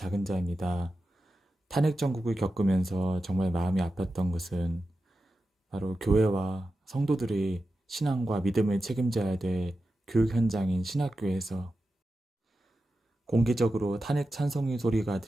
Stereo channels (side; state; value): both; normal; correlation 0.92